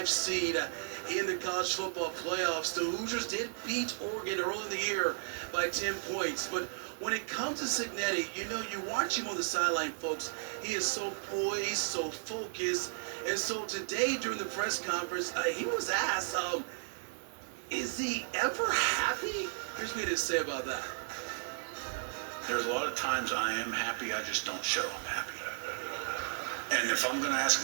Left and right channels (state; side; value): silent; left; digital silence